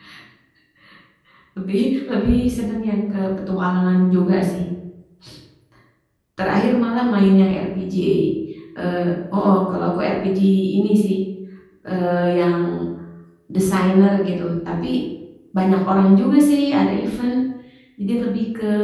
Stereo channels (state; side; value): identical; both; correlation 1.00